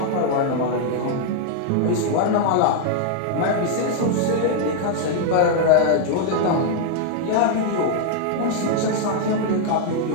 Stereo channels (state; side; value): different; both; correlation 0.00